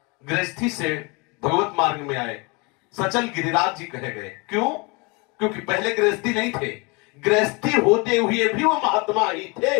गृहस्थी से भगवत मार्ग में आए, सचल गिरिराज जी कहे गए। क्यों? क्योंकि पहले गृहस्थी नहीं थे, गृहस्थी होते हुए भी वो महात्मा ही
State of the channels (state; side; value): quieter; right; 28.8 dB